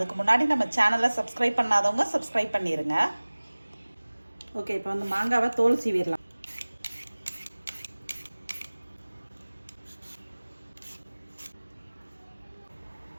முன்னாடி நம்ம சேனலை சப்ஸ்கிரைப் பண்ணாதவங்க சப்ஸ்கிரைப் பண்ணிடுங்க. ஓகே, இப்போ வந்து மாங்காவை தோல் சீவிடலாம்.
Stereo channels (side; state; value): both; inverted; correlation -1.00